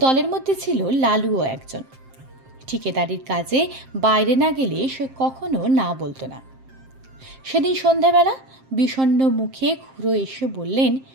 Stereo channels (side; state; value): left; late; 7.6 ms